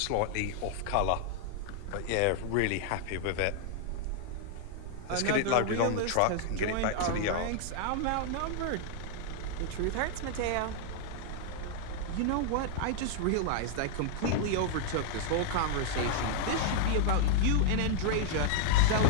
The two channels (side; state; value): both; different; correlation 0.00